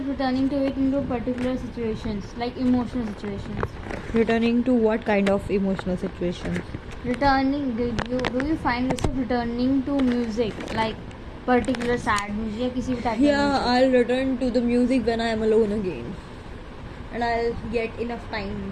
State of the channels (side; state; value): both; identical; correlation 1.00